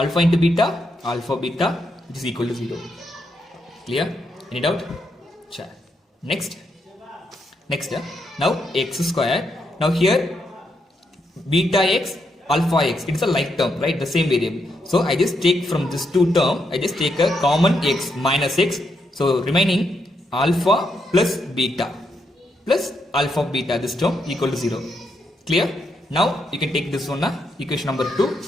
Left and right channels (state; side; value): normal; both; correlation 0.80